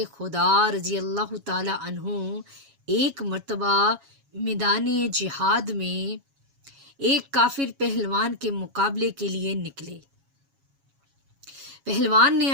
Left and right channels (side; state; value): left; late; 7.2 ms